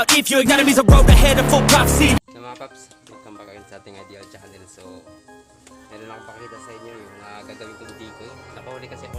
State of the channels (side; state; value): both; identical; correlation 1.00